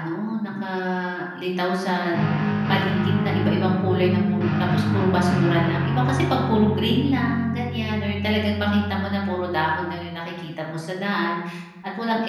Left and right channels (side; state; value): both; identical; correlation 1.00